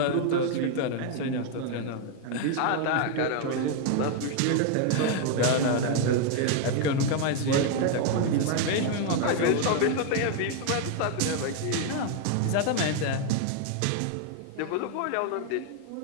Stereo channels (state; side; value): different; both; correlation 0.00